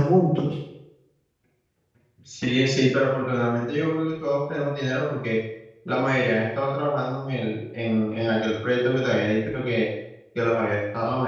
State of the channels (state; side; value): identical; both; correlation 1.00